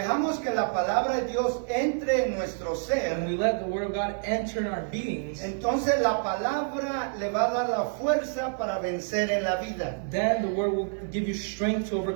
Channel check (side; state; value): left; silent; 59 dB below the other